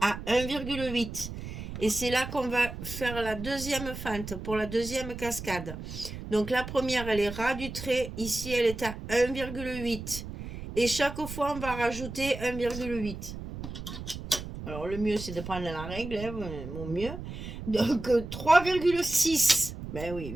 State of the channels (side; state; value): right; noise; rumble, 9 dB below the sound